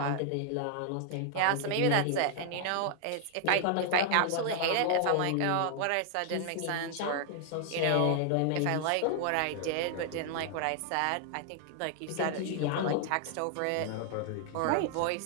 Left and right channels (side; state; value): both; different; correlation 0.00